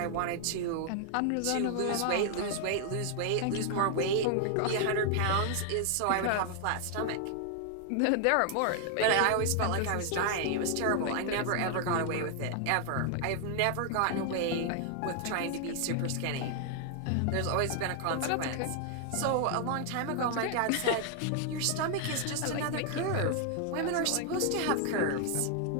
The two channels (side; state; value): both; different; correlation 0.00